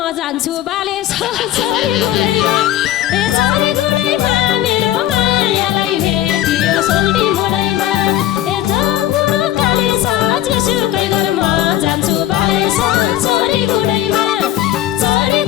जान्छु बाले चरी गुडैमा मेरो मायालाई भेटियो सोल्टी मोडैमा गौ काले सत्य जेसुकै गर म जान्छु बाले चरी गुडैमा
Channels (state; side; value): quieter; right; 12.9 dB